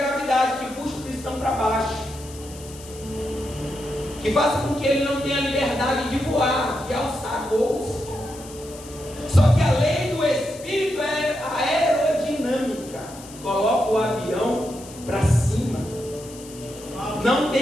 que puxa o cristão para baixo, que faz com que ele não tenha liberdade de voar, de alçar voos. Só que a lei do Espírito é a aerodinâmica, coloca o avião para cima, não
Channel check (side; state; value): left; noise; hiss, 18 dB below the sound